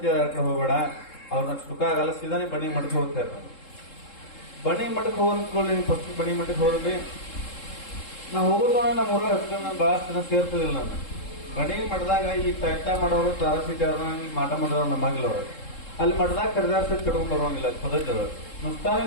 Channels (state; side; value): late; right; 3.7 ms